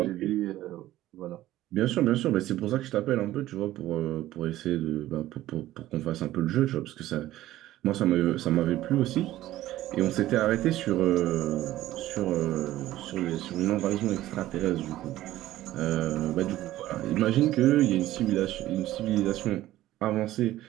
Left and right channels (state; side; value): quieter; left; 14.9 dB